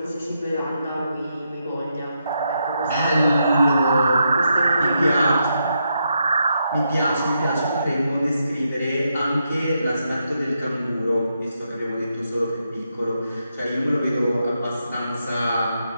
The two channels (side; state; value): both; inverted; correlation -0.82